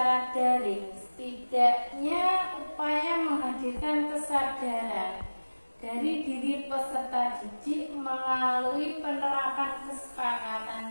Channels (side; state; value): both; inverted; correlation -1.00